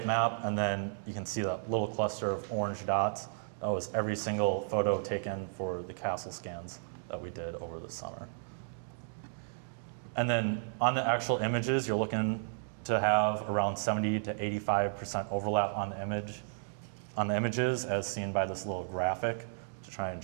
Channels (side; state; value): left; silent; digital silence